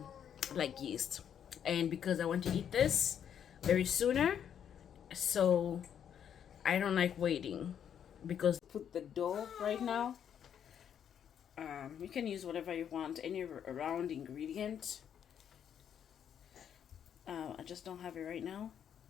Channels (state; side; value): quieter; right; 8.8 dB